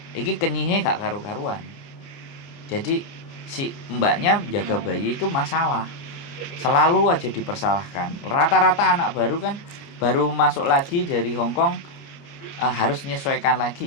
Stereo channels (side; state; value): right; late; 29 ms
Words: Iki kenyihe gak karu-karuan. Jadi si mbaknya jaga bayi itu masalah. Selalu aja dipersalahkan. Rata-rata anak baru kan baru masuk lagi dari Hong Kong harus menyesuaikan